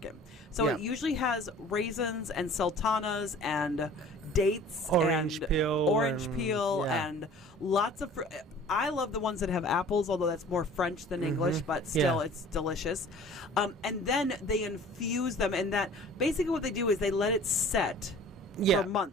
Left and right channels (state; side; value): normal; both; correlation 0.47